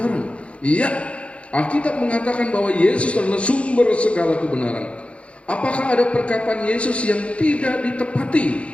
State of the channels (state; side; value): late; right; 0.061 ms